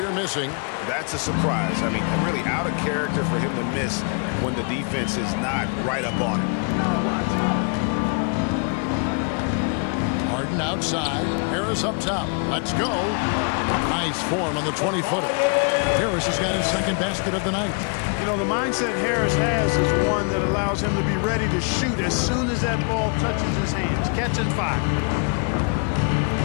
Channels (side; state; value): right; quieter; 37.9 dB